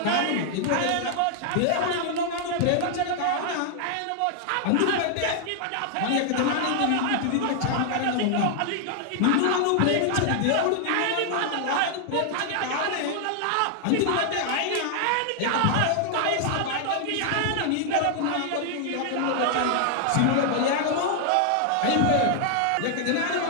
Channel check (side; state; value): both; different; correlation 0.00